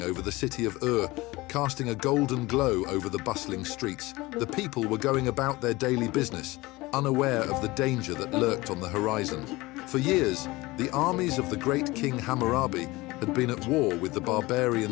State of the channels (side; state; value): right; quieter; 21.0 dB